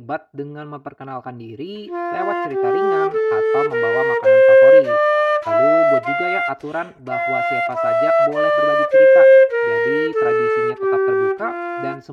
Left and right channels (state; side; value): identical; both; correlation 1.00